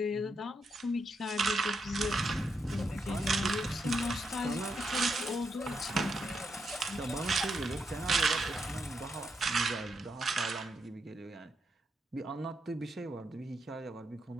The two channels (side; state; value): both; normal; correlation 0.81